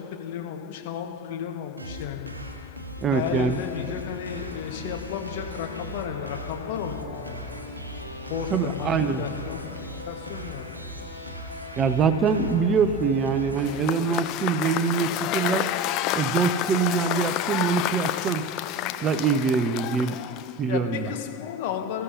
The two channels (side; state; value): both; normal; correlation 0.28